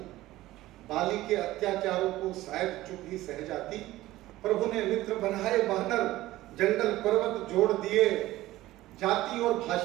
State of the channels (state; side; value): quieter; left; 16.5 dB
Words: बाली के अत्याचारों को शायद चुप ही सह जाती। प्रभु ने मित्र बनाए वानर, जंगल पर्वत जोड़ दिए, जाति और